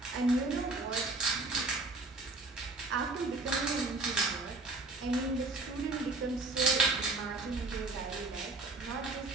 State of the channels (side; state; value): left; quieter; 3.3 dB